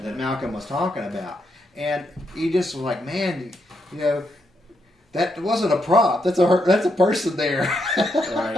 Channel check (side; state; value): both; normal; correlation 0.80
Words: that Malcolm was talking about. And he just was like, man, that wasn't a prop. That's a person there.